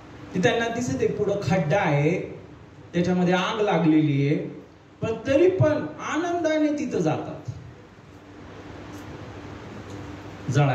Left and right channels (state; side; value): identical; both; correlation 1.00